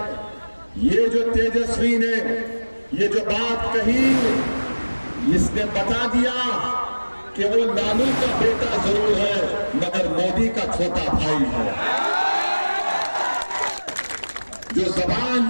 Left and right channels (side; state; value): both; inverted; correlation -1.00